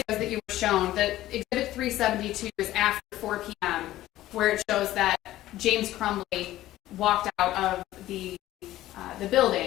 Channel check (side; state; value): right; quieter; 14.9 dB